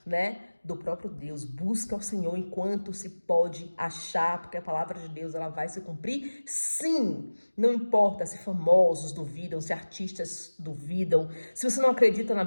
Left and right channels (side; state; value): both; inverted; correlation -1.00